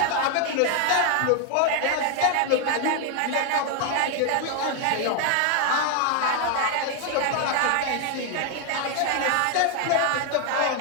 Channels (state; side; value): different; both; correlation 0.00